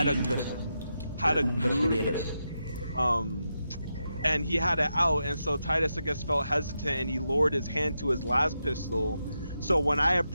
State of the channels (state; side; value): inverted; both; correlation -0.86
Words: a good, and he had it out, and so Titus, I guess, felt hesitant, and he lowered his hand to his last pistol. So when I